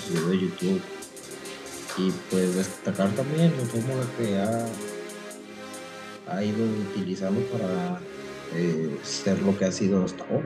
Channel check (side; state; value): both; identical; correlation 1.00